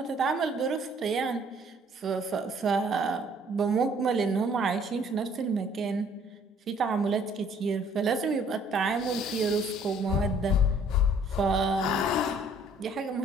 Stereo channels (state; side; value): normal; both; correlation 0.59